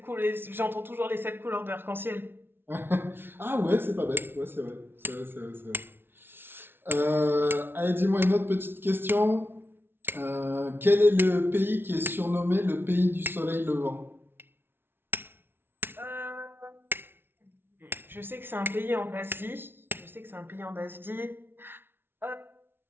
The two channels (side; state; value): left; late; 0.11 ms